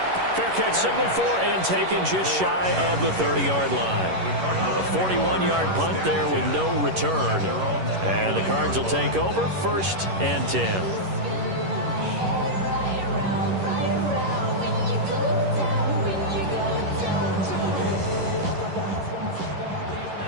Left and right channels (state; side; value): late; left; 11 ms